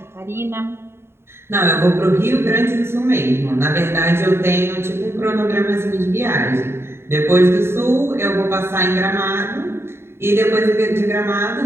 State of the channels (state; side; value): late; left; 0.12 ms